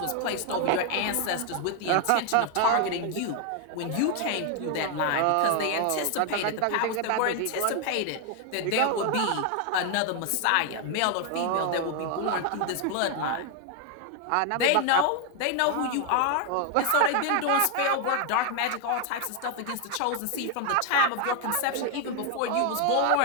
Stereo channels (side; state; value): both; different; correlation 0.01